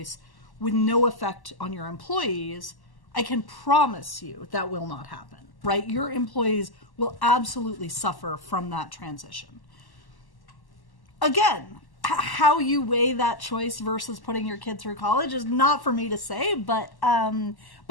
with no effect on your employees, I can promise you that will not happen, right? Your employees will absolutely suffer from that transition. Again, how you weigh that choice versus putting your kid through college is not for me to say, but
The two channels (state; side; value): late; right; 1.1 ms